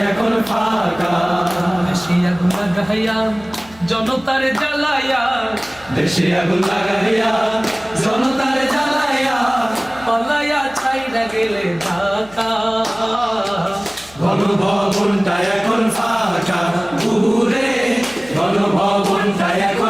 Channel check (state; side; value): noise; left; hum, 25 dB below the sound